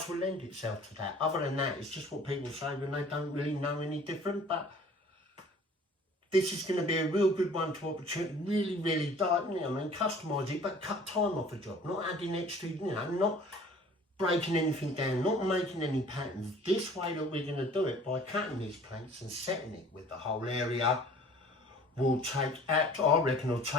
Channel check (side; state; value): both; normal; correlation 0.50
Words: will lend itself to that. Other than that, it's just what people say when they don't really know any different. But this is going to be a real good one to opportunity, really, customise it, but cut time off a job, not adding extra, you know, not breaking anything down, not making any patterns. This way that we're going to do it, by cutting these planks and setting it with the whole area, will take, I reckon it'll